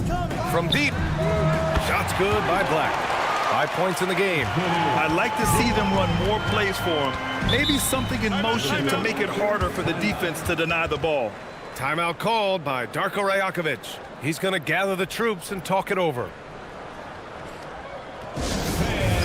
From deep. Shot's good by Black. 5 points in the game. I'd like to see them run more plays for him. Maybe something in motion to make it harder for the defense to deny the ball. Timeout called by Darko Rajakovic. He's going to gather the troops and talk it over. It's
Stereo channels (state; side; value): identical; both; correlation 1.00